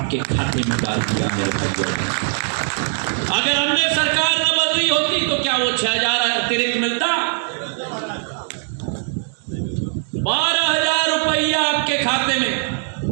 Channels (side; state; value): left; silent; 65 dB below the other